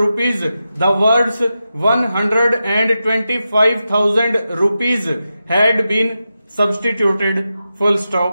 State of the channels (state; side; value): inverted; both; correlation -0.90